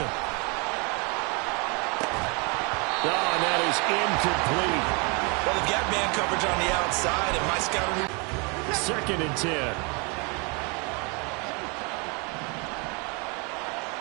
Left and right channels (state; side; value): quieter; left; 31.9 dB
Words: Oh, and that is incomplete. Well, they've got man coverage on the outside, and my scouting... 2nd and 10.